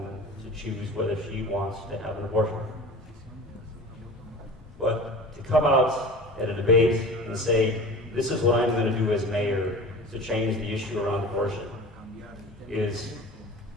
to choose whether she wants to have an abortion. But to come out at a debate and say, this is what I'm going to do as mayor to change the issue around abortion,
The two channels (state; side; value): normal; both; correlation 0.37